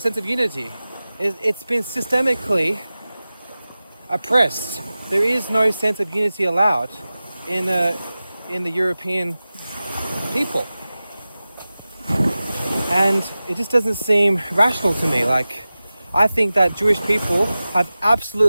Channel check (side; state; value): both; inverted; correlation -0.96